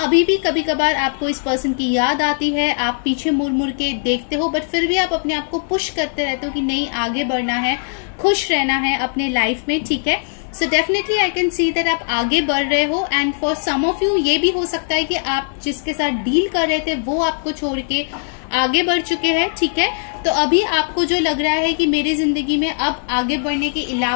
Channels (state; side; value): silent; right; 66 dB below the other